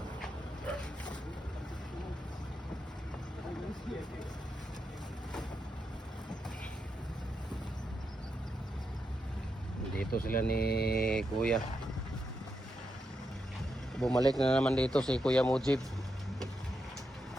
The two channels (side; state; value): both; normal; correlation 0.84